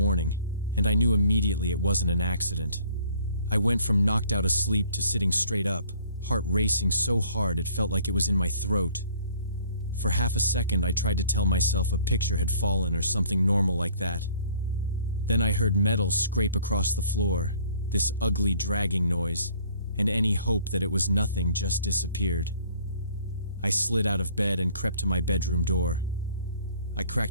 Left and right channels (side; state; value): both; inverted; correlation -0.56